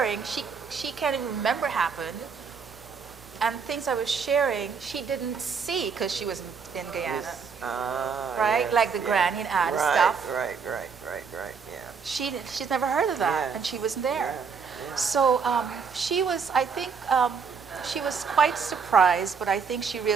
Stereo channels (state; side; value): quieter; left; 5.8 dB